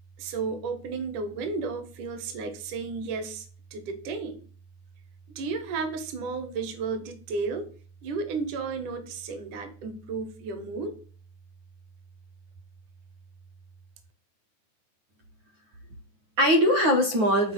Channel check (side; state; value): left; late; 9.4 ms